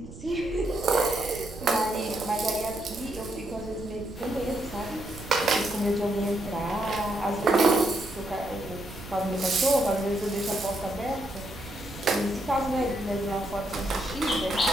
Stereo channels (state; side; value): noise; right; rumble, 15 dB below the sound